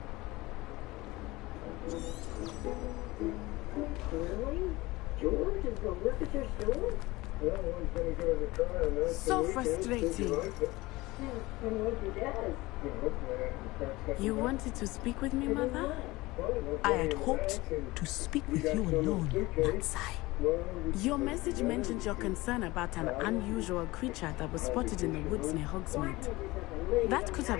Really? George is going to work at your store? Well, one's going to give it a try on that. So frustrating. You wanted to speak with me, Mother? I had hoped to speak with you alone, Natsai. Your message mentioned your concern about an unusual creature that was spotted in the woods near Hogsmeade. That could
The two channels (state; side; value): quieter; right; 20.6 dB